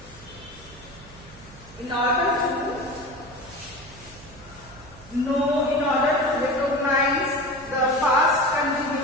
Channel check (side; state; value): right; noise; hum, 21 dB below the sound